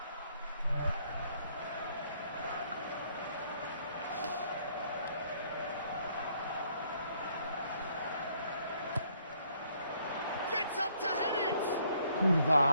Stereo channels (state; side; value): inverted; both; correlation -0.67